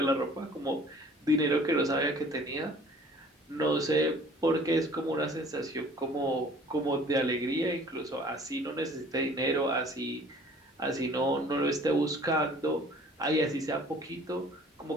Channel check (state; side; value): normal; both; correlation 0.51